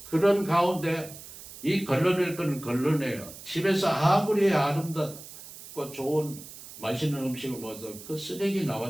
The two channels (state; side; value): noise; right; hiss, 15 dB below the sound